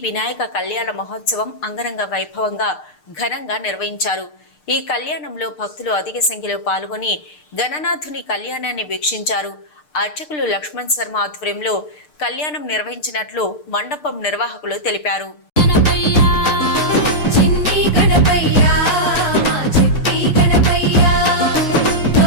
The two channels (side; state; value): right; late; 6.6 ms